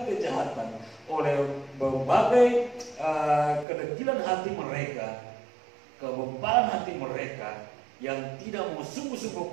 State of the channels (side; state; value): left; drops out; at 3.7 s